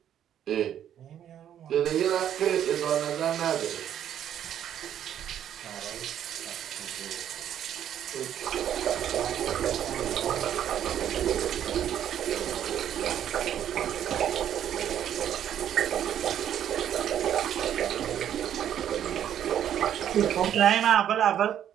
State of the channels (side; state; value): left; quieter; 10.2 dB